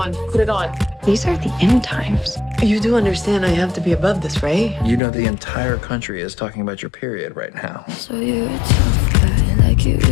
Put it on. These are the end times. You do understand I have to be above this, right? You know the entire country is talking about your period right now. So you're a tough guy, like you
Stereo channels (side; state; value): right; drops out; at 5.0 s